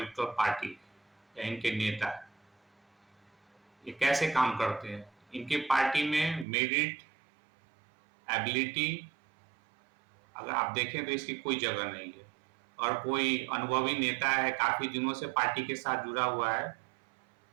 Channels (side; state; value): left; drops out; at 6.5 s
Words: पार्टी या इनके नेता, ये कैसे काम करते हैं? इनकी पार्टी में मेरिट, एबिलिटी, अगर आप देखें तो इसकी कोई जगह नहीं है। और कोई अनुभवी नेता है, काफी दिनों से पार्टी के साथ जुड़ा हुआ है,